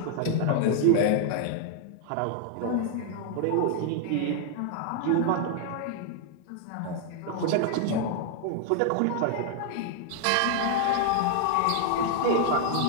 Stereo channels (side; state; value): both; different; correlation 0.00